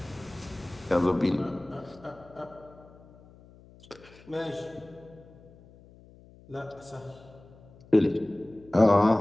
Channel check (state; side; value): noise; left; hum, 24 dB below the sound